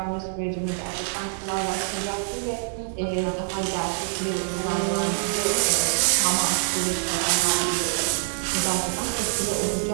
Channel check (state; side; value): silent; left; digital silence